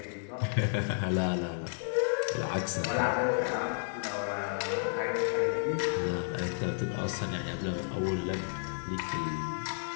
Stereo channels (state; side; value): silent; right; 56 dB below the other